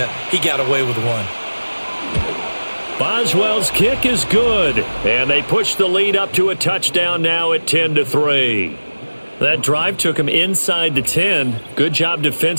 He got away with one. Boswell's kick is good. And they push the lead up to a touchdown now at 10-3. That drive took him inside the 10. Good job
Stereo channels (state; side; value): inverted; both; correlation -1.00